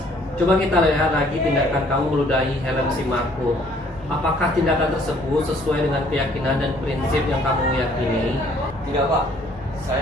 coba kita lihat lagi tindakan kamu meludahi helm si Marco. Apakah tindakan tersebut sesuai dengan keyakinan dan prinsip yang kamu yakini? Tidak Pak,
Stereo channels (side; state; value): both; normal; correlation 0.60